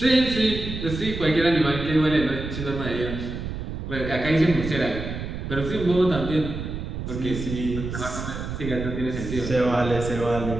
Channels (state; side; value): noise; right; rumble, 6 dB below the sound